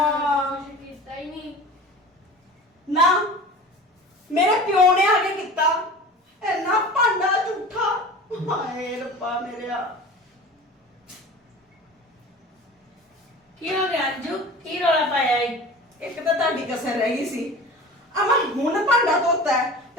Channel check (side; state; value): both; normal; correlation 0.37